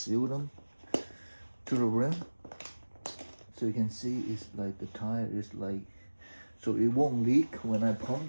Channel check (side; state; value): both; inverted; correlation -1.00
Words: them to the rim. So you can see it's like the tire is like, so it won't leak when I